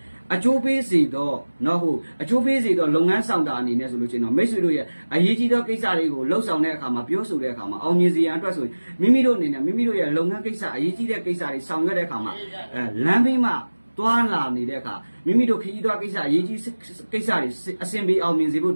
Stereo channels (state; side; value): inverted; both; correlation -1.00